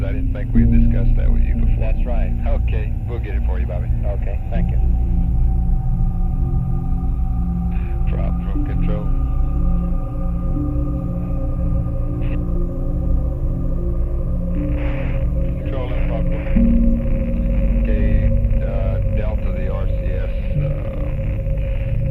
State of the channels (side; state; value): both; identical; correlation 1.00